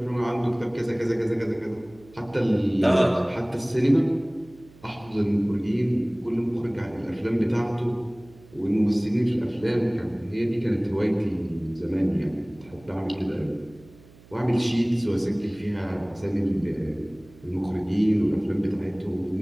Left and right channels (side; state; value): right; noise; hum, 24 dB below the sound